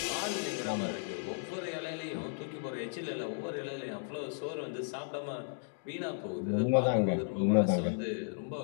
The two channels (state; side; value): silent; right; digital silence